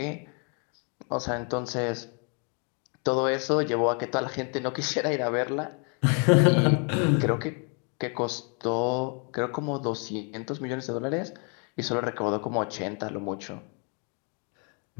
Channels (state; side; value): quieter; right; 38.1 dB